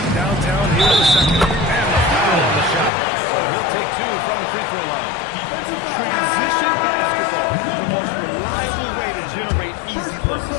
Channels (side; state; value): right; drops out; at 2.9 s